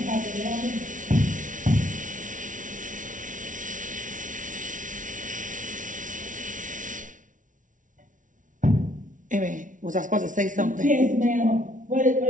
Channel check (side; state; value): left; late; 0.37 ms